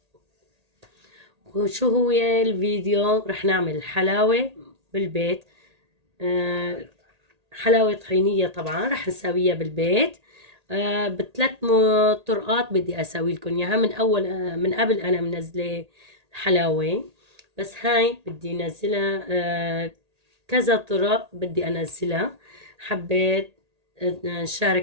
وشو هو الفيديو؟ رح نعمل حلاوة بالبيت، حلاوة طحينية طبعا رح نسويها بالبيت. بثلاث طرقات بدي اسوي لكم اياها. من قبل انا منزله حلاوة، بس هاي بدي انزلها كذا طرق بدي انزلها. حبيت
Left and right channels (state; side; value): late; left; 1.8 ms